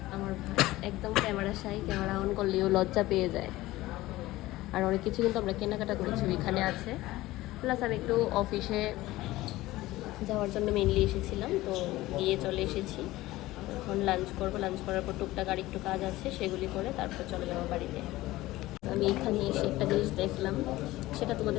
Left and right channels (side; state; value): right; quieter; 17.7 dB